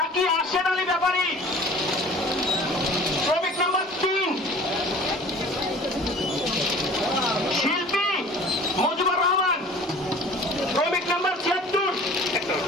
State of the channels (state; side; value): normal; both; correlation 0.45